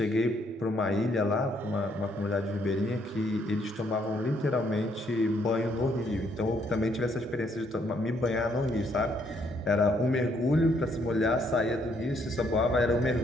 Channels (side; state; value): both; normal; correlation 0.70